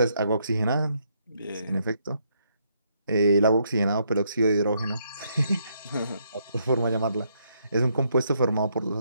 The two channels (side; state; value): both; inverted; correlation -0.74